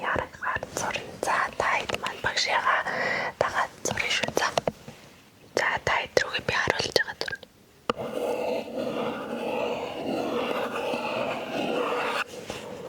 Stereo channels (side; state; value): both; identical; correlation 1.00